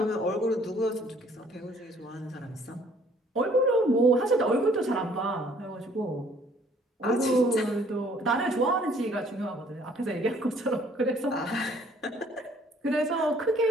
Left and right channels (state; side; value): normal; both; correlation 0.59